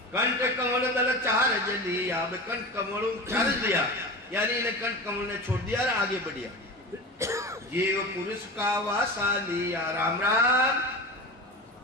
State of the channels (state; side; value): normal; both; correlation 0.29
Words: कंठ कमल दल चार जली, अब कंठ कमल चार दिया, यानी इन्हें कंठ कमल ने छोड़ दिया और आगे बढ़िया। जीव पुरुष का वासा लिया, राम राम।